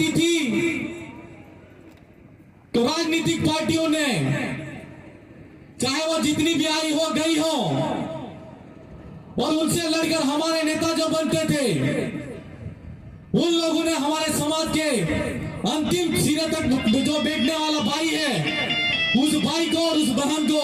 थी, तो राजनीतिक पार्टियों ने, चाहे वो जितनी भी आई हो गई हो, और उनसे लड़कर हमारे नेता जो बनते थे, उन लोगों ने हमारे समाज के अंतिम सिरे तक जो बैठने वाला भाई है, उस भाई को और उस बहन को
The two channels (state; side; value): identical; both; correlation 1.00